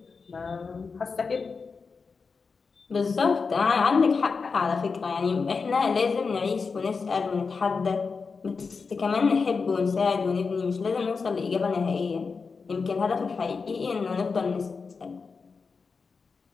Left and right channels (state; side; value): quieter; right; 4.9 dB